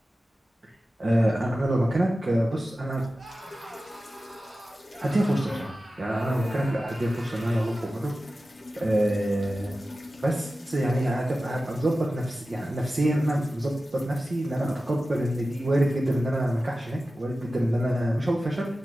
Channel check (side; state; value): both; normal; correlation 0.94